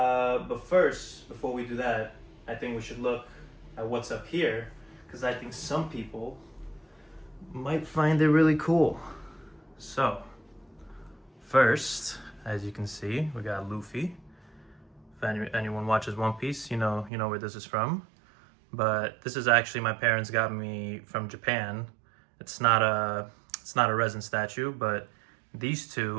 first, before we do that, I think we should look at what's up here, because I think some people might find it really cool. So, first, as you can see, we got Luffy. If anyone watches One Piece, you know where this is from. But this is actually my parents got me from Japan. It's not a resin statue, but these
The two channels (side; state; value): left; drops out; at 17.1 s